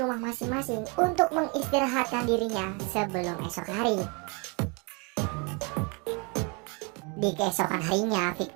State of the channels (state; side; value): quieter; left; 32.3 dB